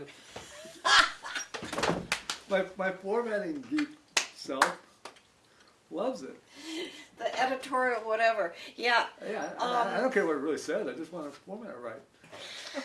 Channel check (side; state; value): both; identical; correlation 1.00